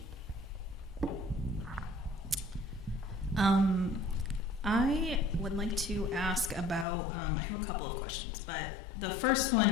I would like to ask about, I have a couple of questions, but the first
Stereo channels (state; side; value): drops out; right; at 6.9 s